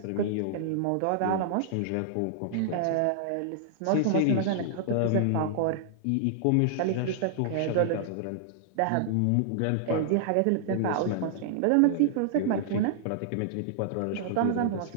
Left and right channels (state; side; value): different; both; correlation -0.01